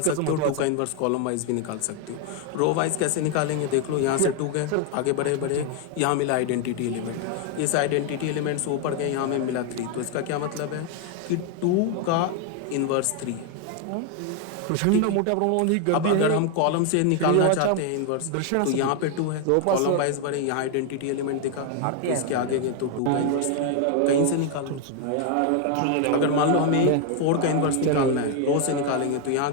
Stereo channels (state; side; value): different; both; correlation 0.01